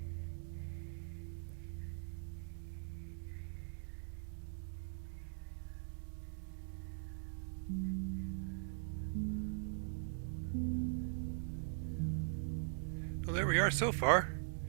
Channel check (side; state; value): left; silent; digital silence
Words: Well, there we are so far.